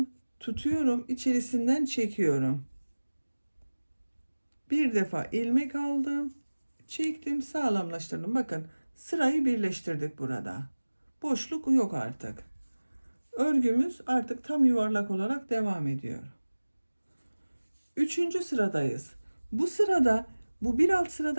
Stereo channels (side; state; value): both; inverted; correlation -1.00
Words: tutuyorum, içerisinden çekiyorum. Bir defa ilmek aldım, çektim, sağlamlaştırdım. Bakın sırayı birleştirdik burada. Boşluk yok artık. Örgümüz artık tam yuvarlak olarak devam ediyor. Üçüncü sıradayız. Bu sırada bu bir alt